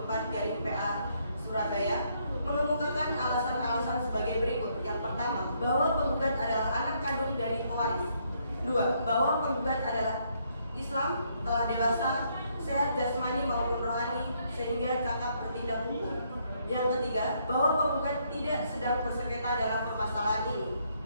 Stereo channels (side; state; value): both; inverted; correlation -0.72